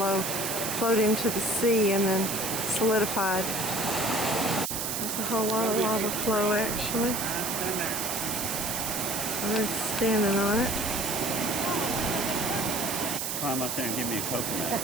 flowed into the sea and then solidified. There's a whole lot of lava flow actually. I'm standing on it. Climb up there and give me a coconut.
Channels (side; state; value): right; noise; hiss, 2 dB below the sound